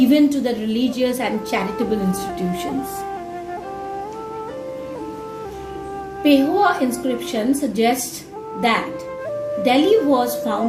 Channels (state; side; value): identical; both; correlation 1.00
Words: to the religious and charitable institutions. Pehua inscription suggests that Delhi was